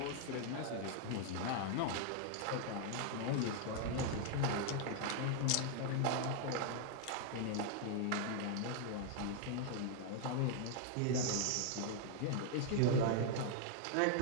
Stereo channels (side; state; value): both; different; correlation 0.00